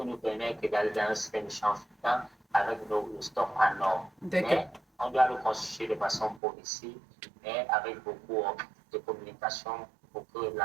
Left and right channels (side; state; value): left; drops out; at 6.4 s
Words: nous permettre d'aller dans un système de charge flottant avec nos stocks en or. Mais on doit le constituer de façon progressive, mais avec beaucoup de communication pour que